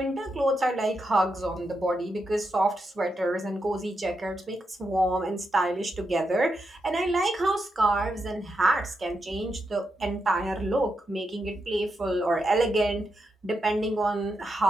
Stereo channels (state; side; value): normal; both; correlation 0.84